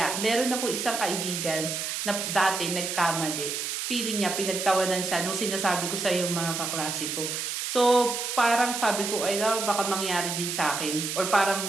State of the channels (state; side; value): noise; right; hiss, 3 dB below the sound